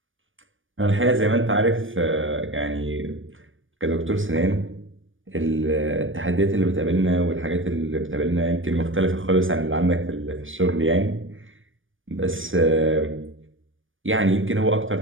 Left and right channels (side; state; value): left; late; 0.57 ms